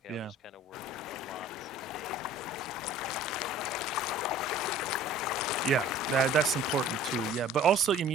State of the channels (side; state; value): both; normal; correlation 0.47